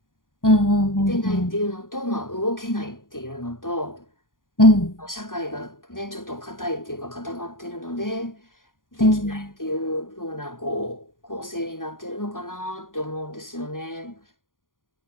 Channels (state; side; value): late; right; 0.90 ms